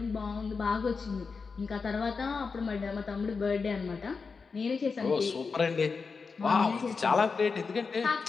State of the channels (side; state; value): right; quieter; 4.9 dB